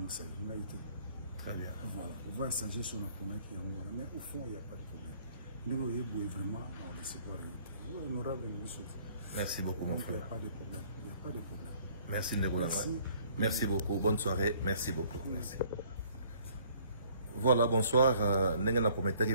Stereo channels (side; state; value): both; inverted; correlation -0.59